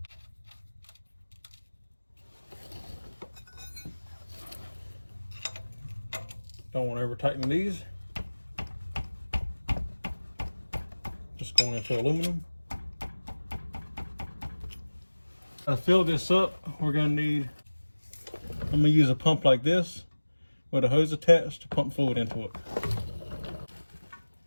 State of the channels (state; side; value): inverted; both; correlation -1.00